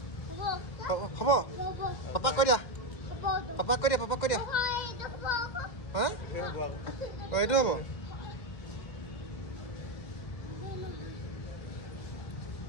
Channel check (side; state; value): right; late; 2.1 ms